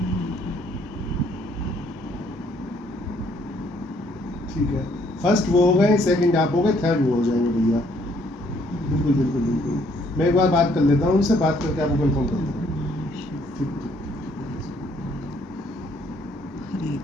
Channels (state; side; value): normal; both; correlation 0.66